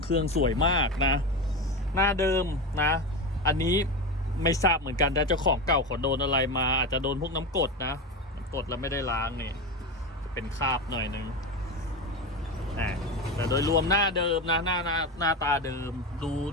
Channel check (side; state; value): both; normal; correlation 0.21